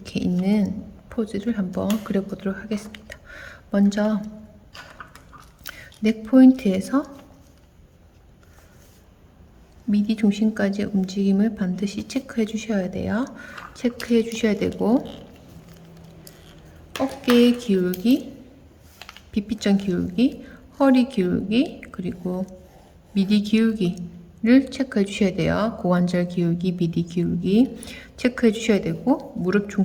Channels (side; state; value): both; identical; correlation 1.00